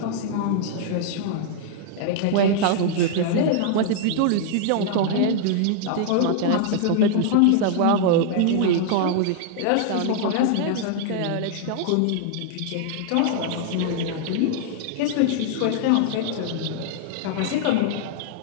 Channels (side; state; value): both; different; correlation -0.01